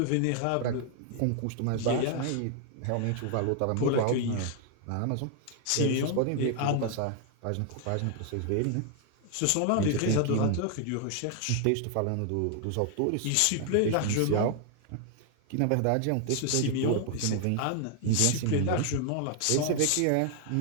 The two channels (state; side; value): different; both; correlation 0.00